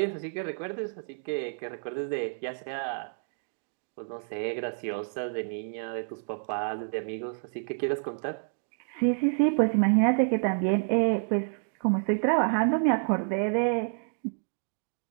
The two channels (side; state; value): left; silent; digital silence